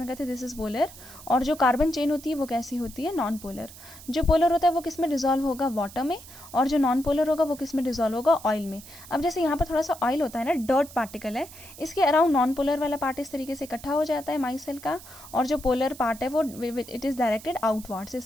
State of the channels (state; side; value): noise; right; hiss, 17 dB below the sound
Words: करते हैं, दिस इज पोलर, और जो कार्बन चेन होती है वो कैसी होती है, नॉन पोलर। जो पोलर होता है वो किस में डिजोल्व होगा, वाटर में, और जो नॉन पोलर होगा वो किस में डिजोल्व होगा, ऑयल में। अब जैसे यहाँ पर थोड़ा सा ऑयल होता है ना, डर्ट पार्टिकल है, इसके अराउंड नॉन पोलर वाला पार्ट इस तरीके से इकट्ठा हो जाता है माइसेल का, और जो पोलर पार्ट है वो इट इज डायरेक्टेड आउटवर्ड्स